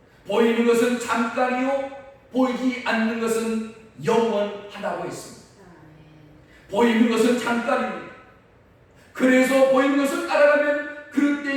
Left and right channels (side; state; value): both; identical; correlation 1.00